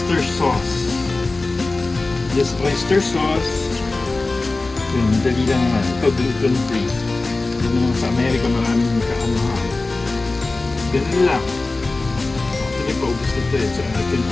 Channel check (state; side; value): quieter; right; 3.3 dB